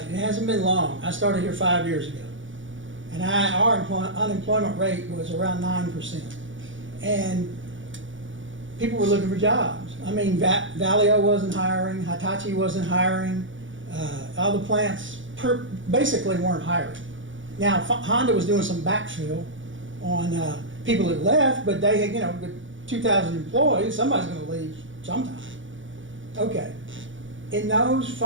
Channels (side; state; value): left; late; 0.56 ms